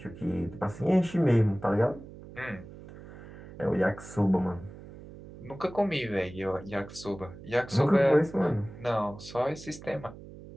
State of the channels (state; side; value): noise; right; hum, 16 dB below the sound